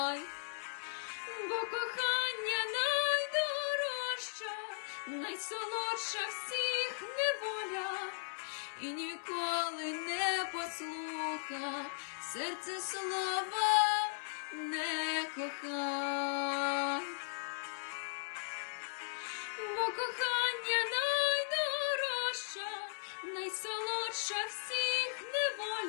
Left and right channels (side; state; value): right; silent; digital silence